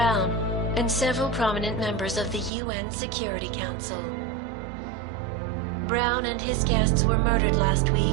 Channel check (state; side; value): drops out; left; at 2.5 s